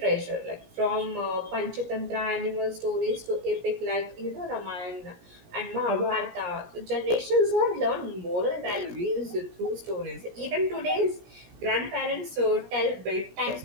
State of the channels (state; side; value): late; left; 17 ms